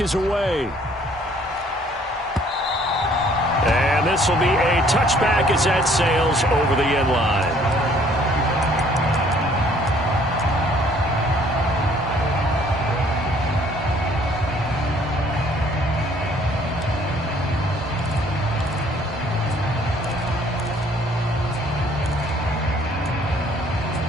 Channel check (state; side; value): normal; both; correlation 0.60